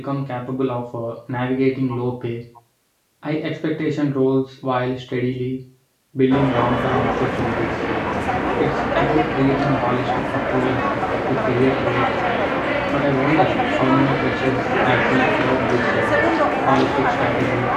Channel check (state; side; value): identical; both; correlation 1.00